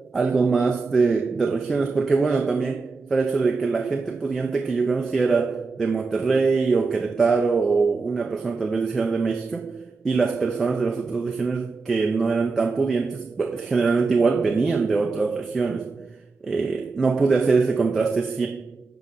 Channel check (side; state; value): left; quieter; 4.2 dB